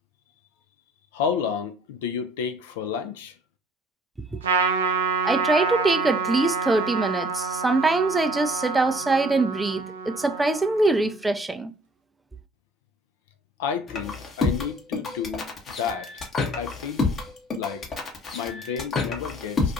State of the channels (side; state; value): both; normal; correlation 0.56